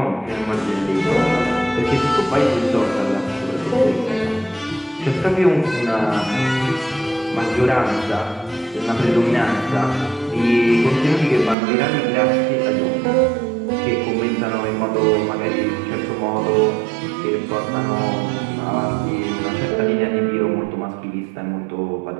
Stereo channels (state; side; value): drops out; left; at 11.6 s